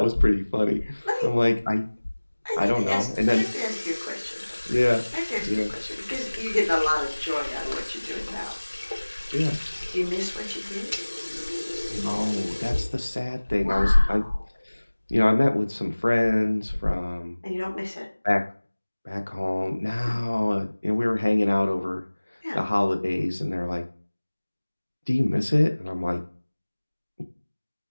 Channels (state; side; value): inverted; both; correlation -1.00